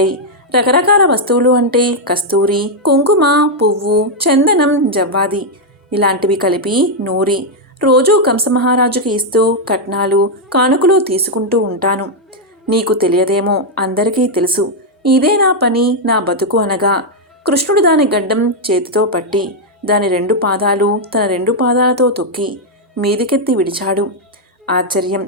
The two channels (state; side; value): normal; both; correlation -0.01